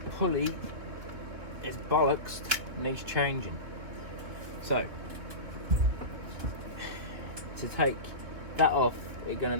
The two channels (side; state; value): left; late; 3.1 ms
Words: pulley is bollocks, needs changing. So to take that off, we're going